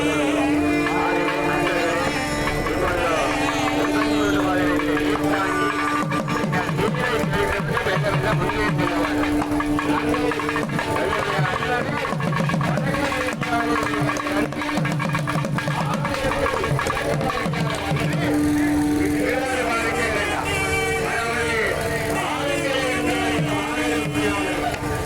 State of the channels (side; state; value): both; identical; correlation 1.00